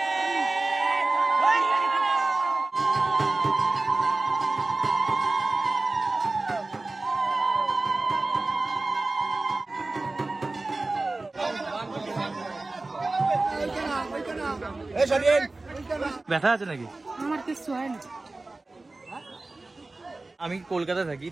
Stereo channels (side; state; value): left; quieter; 3.2 dB